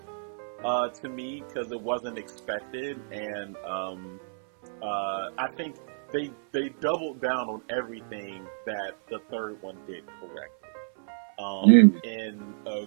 to me because it wasn't expected, and I think they doubled down on everything that the third one did correctly in a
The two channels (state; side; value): silent; left; 58 dB below the other